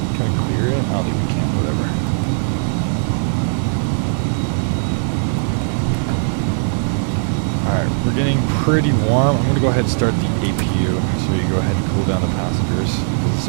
Can we clear it? I don't think we can, whatever. Alright, we're getting pretty warm. I'm going to go ahead and start the APU so we can go ahead and cool down the passengers because it's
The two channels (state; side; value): silent; left; digital silence